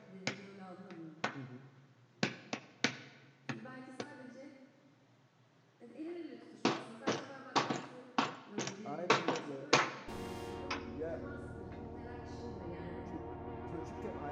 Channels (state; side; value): identical; both; correlation 1.00